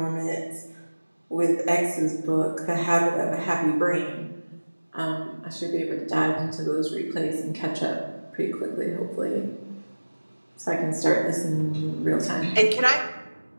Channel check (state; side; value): inverted; both; correlation -1.00